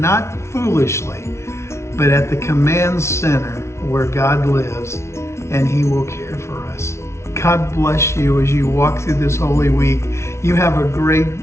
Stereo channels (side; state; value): right; late; 0.13 ms